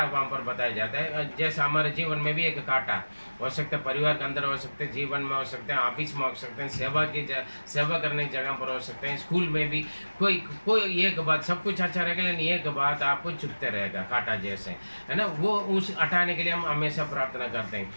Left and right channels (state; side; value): inverted; both; correlation -1.00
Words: वहां पर बताया जाता है, जैसे हमारे जीवन में भी एक कांटा हो सकता है, परिवार के अंदर हो सकते हैं, जीवन में हो सकते हैं, ऑफिस में हो सकते हैं, सेवा करने की जगह पर हो सकते हैं, स्कूल में भी कोई एक बात, सब कुछ अच्छा रहेगा लेकिन एक बात आपको चुभते रहेगा, कांटा जैसे, है ना। वो उस हटाने के लिए हम हमेशा प्रार्थना करते हैं।